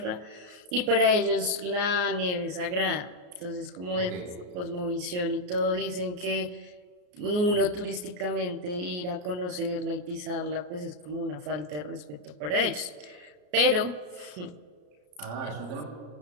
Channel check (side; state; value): left; late; 34 ms